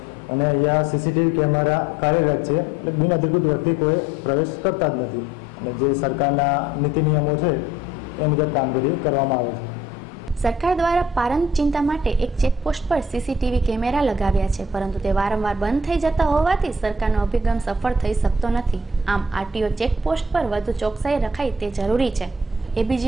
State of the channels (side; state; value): both; normal; correlation 0.58